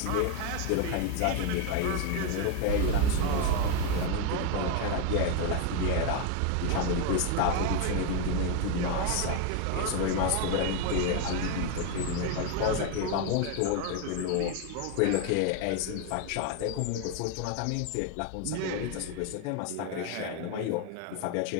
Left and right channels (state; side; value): different; both; correlation 0.01